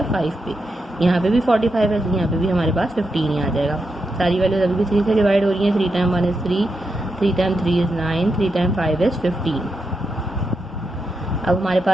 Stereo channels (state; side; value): normal; both; correlation 0.85